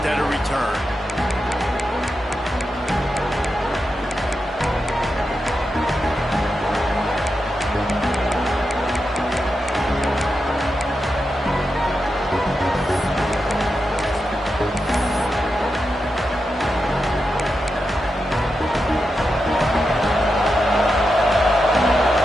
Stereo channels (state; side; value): normal; both; correlation 0.88